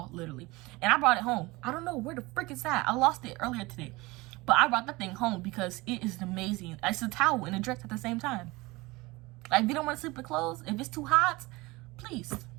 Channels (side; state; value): left; quieter; 22.3 dB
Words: literally. And I brought it home. I don't know where the frick it's at. I lost it earlier today, but I brought that thing home because it is amazing. It's a towel and a dress at the same time. Like, if you don't want to sleep with clothes, if it's too hot, please,